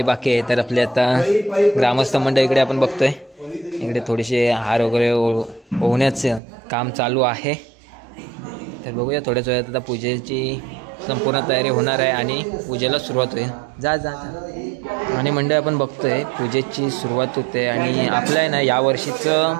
बाकी आहे. तर आपले आता ग्रामस्थ मंडळ इकडे आपण बघतोय, इकडे थोडेसे हार वगैरे ओवण्याचं काम चालू आहे. तर बघूया थोड्याच वेळात आता पूजेची संपूर्ण तयारी होणार आहे आणि पूजेला सुरुवात होईल. जा जा आणि मंडळ आपण बघतोय पूजेची सुरुवात होते आणि आपलं आहे ना यावर्षीचं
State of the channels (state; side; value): drops out; left; at 6.4 s